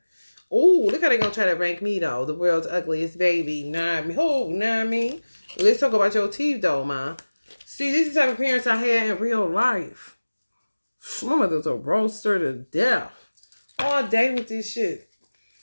Oh, look how they gonna try to rank me though. The world's ugliest baby. Not me. Oh, not me. Let's talk about your teeth though, man. See, this is the type of parents I had in real life. My mother's a roaster to death. All day with this shit.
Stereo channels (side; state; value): both; inverted; correlation -1.00